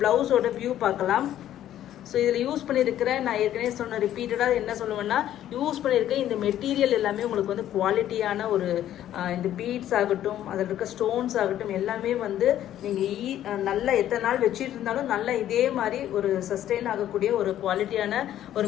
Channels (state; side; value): quieter; right; 11.9 dB